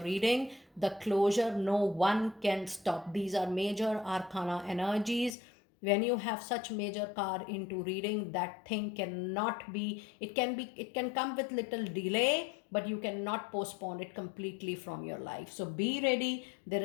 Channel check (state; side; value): drops out; right; at 5.4 s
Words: reading, the closure, no one can stop. These are major arcana energies. When you have such major card into reading, that thing cannot be, it can come with little delay, but you cannot postpone it completely from your life. So be ready. There